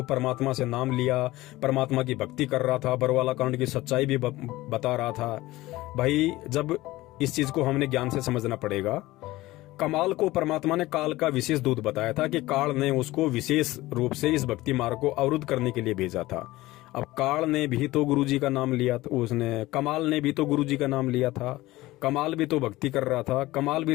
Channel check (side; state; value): right; quieter; 18.2 dB